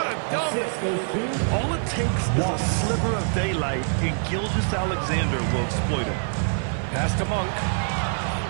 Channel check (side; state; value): left; silent; 60 dB below the other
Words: a dunk. All it takes is a sliver of daylight, and Gilgeous-Alexander will exploit it. Pass to Monk.